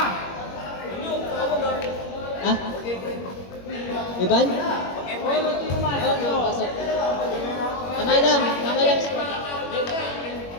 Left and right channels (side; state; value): right; late; 21 ms